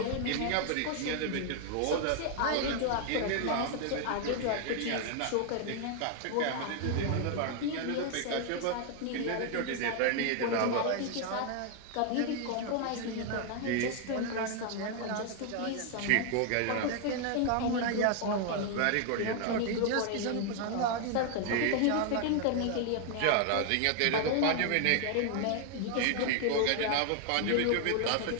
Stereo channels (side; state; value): both; different; correlation 0.00